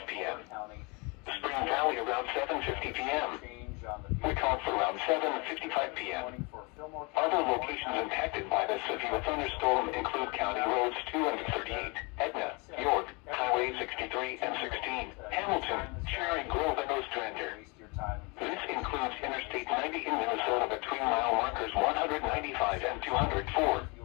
p.m. Spring Valley around 7:50 p.m. Wyckoff around 7:55 p.m. Other locations impacted by the severe thunderstorm include County Roads 2 and 38, Etna, York, Highway 63 and 16, Hamilton, Cherry Grove, and Ostrander. This includes Interstate 90 in Minnesota between mile markers 195 and 204.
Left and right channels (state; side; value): quieter; right; 29.4 dB